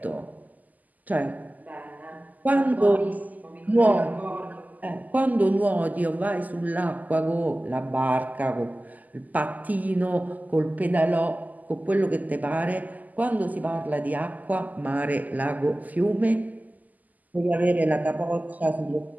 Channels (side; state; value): left; late; 0.080 ms